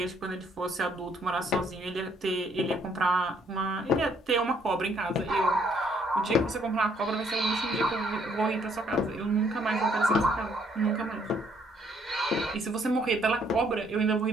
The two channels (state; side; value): normal; both; correlation 0.67